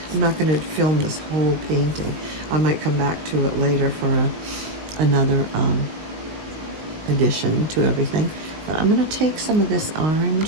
I'm not going to film this whole painting. I might come back to it later for another addition to everything. But I'm going to take some of this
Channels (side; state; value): left; late; 19 ms